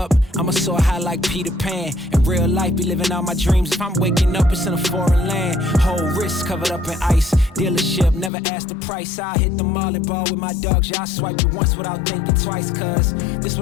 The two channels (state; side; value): drops out; right; at 8.3 s